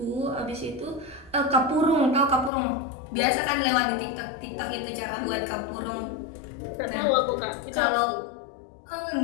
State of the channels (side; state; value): right; drops out; at 2.5 s